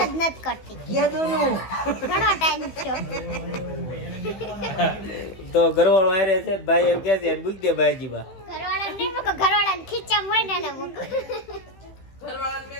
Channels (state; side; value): late; right; 15 ms